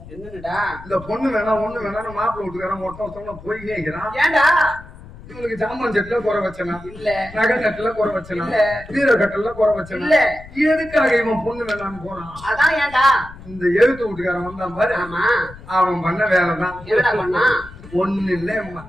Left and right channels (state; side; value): noise; left; rumble, 17 dB below the sound